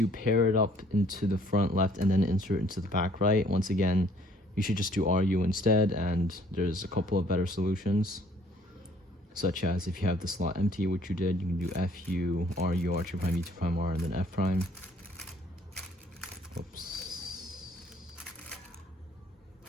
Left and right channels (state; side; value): normal; both; correlation 0.60